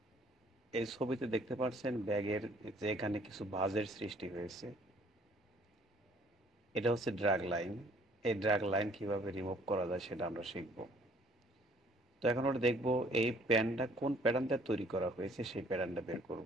এই ছবিতে দেখতে পাচ্ছেন ব্যাগের যে এখানে কিছু ভাঁজের সৃষ্টি হয়েছে, এটা হচ্ছে ড্র্যাগ লাইন। এই ড্র্যাগ লাইন কিভাবে রিমুভ করা যায় সেটা আমরা শিখবো। তো এখন আমরা দেখবো এই প্যানটা কোন প্যাটার্নটা তৈরি করা হয়েছে, সেই প্যাটার্নটা বের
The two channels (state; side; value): normal; both; correlation 0.59